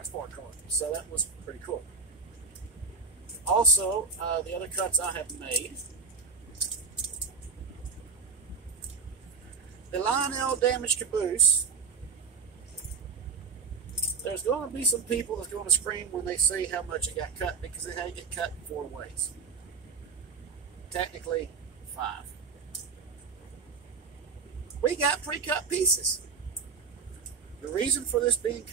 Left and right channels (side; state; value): left; quieter; 5.1 dB